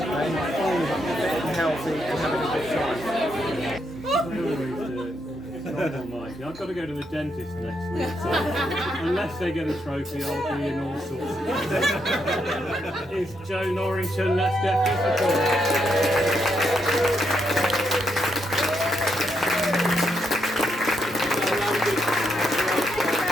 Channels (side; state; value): both; normal; correlation 0.79